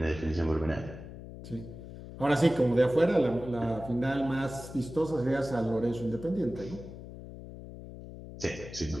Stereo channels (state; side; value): noise; left; hum, 13 dB below the sound